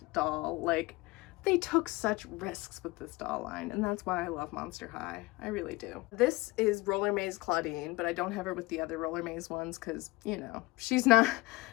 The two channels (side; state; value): right; quieter; 22.0 dB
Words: doll. Like, they took such risks with this doll line, and that's why I love Monster High. I really do. This is Roller Maze Claudine, but I don't have her with the other Roller Maze ones because, you know, she's not